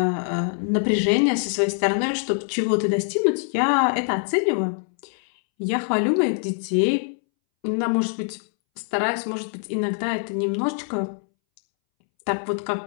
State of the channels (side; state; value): right; silent; 63 dB below the other